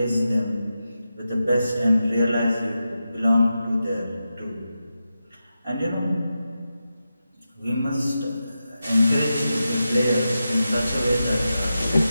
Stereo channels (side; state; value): both; inverted; correlation -0.90